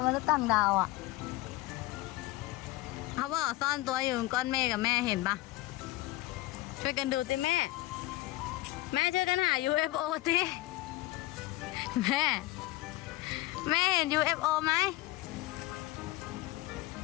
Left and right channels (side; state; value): right; quieter; 18.3 dB